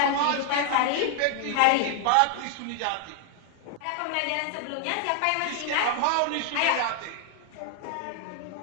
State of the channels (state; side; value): different; both; correlation 0.00